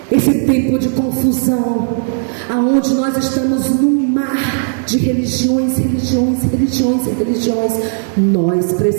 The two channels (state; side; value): silent; left; digital silence